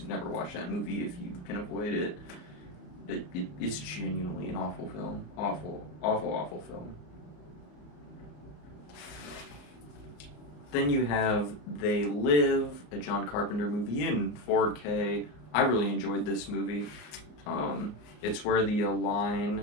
never watch that movie if you can avoid it. It's genuinely an awful film. Awful, awful, awful film. Then you have They Live, a John Carpenter movie in 4K. I really enjoyed this movie. It's where the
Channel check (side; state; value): right; late; 34 ms